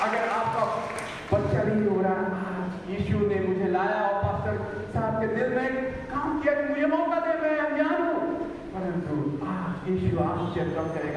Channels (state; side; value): identical; both; correlation 1.00